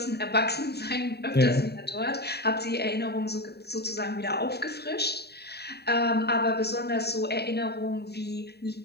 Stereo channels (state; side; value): late; right; 0.47 ms